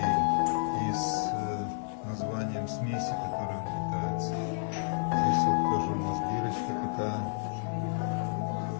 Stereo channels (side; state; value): right; silent; digital silence